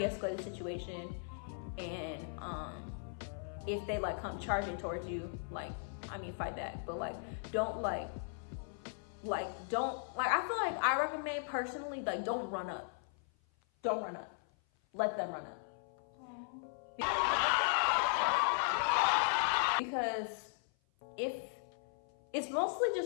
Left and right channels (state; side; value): silent; right; 53 dB below the other